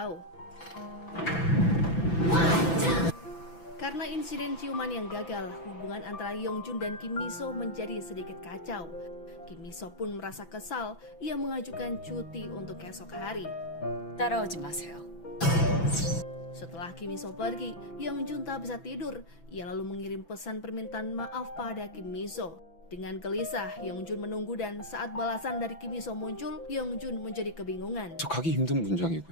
Karena insiden ciuman yang gagal, hubungan antara Yeongjun dan Kim Miso menjadi sedikit kacau. Kim Miso pun merasa kesal, ia mengajukan cuti untuk esok hari. 따라오지 마세요. Setelah Kim Miso pergi, Yeongjun tak bisa tidur. Ia lalu mengirim pesan permintaan maaf pada Kim Miso. Dengan gelisah, Yeongjun menunggu dan saat balasan dari Kim Miso muncul, Yeongjun menjadi kebingungan. 저 가기 힘든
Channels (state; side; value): late; right; 6.0 ms